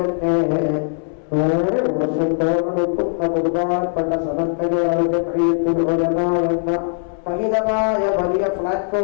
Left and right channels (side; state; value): right; silent; 66 dB below the other